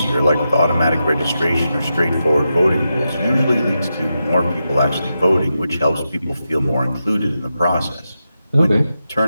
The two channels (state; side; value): inverted; both; correlation -0.88